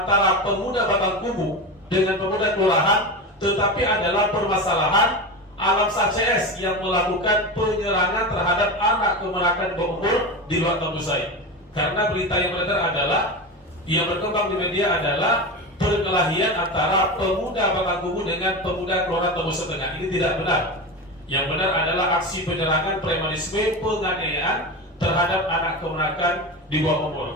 pemuda Batang Kubu dengan pemuda kelurahan, tetapi adalah permasalahan alam sah CS yang melakukan penyerangan terhadap anak kemenakan berumur di luar Tambusai. Karena berita yang beredar adalah, yang berkembang di media adalah perkelahian antara pemuda Batang Kubu dengan pemuda kelurahan Tambusai Tengah. Ini tidak benar. Yang benar adalah aksi penyerangan, premanisme, penganiayaan terhadap anak kemenakan di bawah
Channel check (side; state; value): both; normal; correlation 0.23